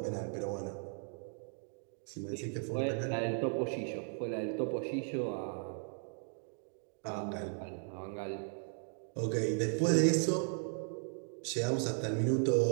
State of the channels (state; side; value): silent; left; 53 dB below the other